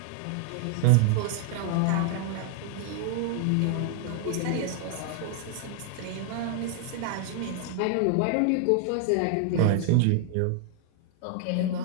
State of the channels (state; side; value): different; both; correlation 0.00